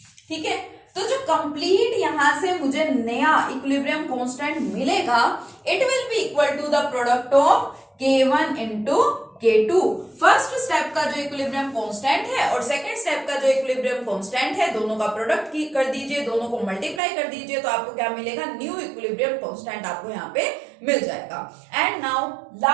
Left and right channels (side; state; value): left; drops out; at 17.0 s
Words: ठीक है। तो जो कंप्लीट यहां से मुझे नया इक्विलिब्रियम कांस्टेंट मिलेगा, it will be equal to the product of K1 into K2। First step का जो इक्विलिब्रियम कांस्टेंट है और सेकंड स्टेप का जो इक्विलिब्रियम कांस्टेंट है, दोनों का प्रोडक्ट की कर दीजिए, दोनों को मल्टीप्लाई कर दीजिए, तो आपको क्या मिलेगा, न्यू इक्विलिब्रियम कांस्टेंट आपको यहाँ पे मिल जाएगा। एंड नाउ